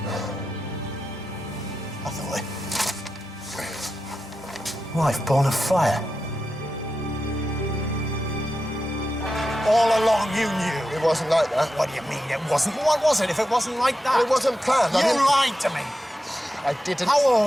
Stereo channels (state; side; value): normal; both; correlation 0.90